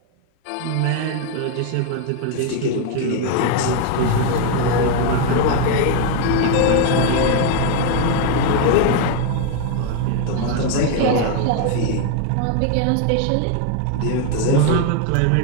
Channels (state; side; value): different; both; correlation 0.01